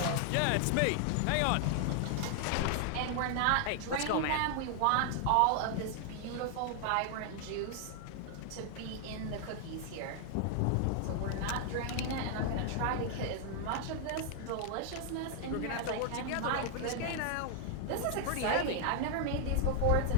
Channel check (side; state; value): both; different; correlation 0.00